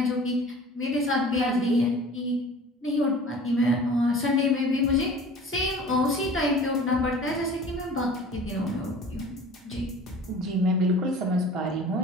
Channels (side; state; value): both; normal; correlation 0.43